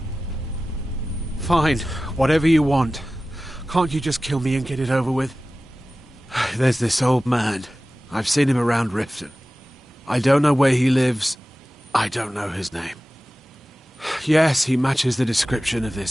Fine, whatever you want. Can't you just kill me and get it over with? There's this old man. I've seen him around Riften. I don't know where he lives. I don't know his name. Yes, he matches the description of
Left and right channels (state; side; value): normal; both; correlation 0.96